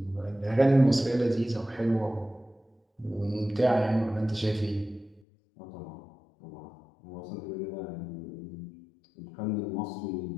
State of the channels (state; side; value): drops out; right; at 5.2 s